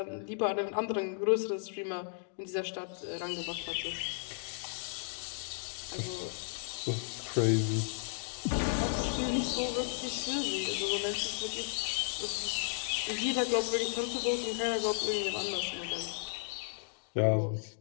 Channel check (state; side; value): silent; right; digital silence